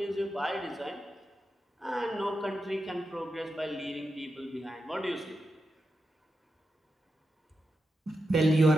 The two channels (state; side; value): normal; both; correlation 0.88